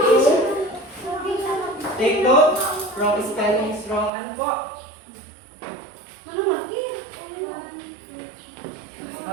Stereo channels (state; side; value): drops out; left; at 4.1 s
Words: 2? Take note. Wrong spelling is wrong. Ano po?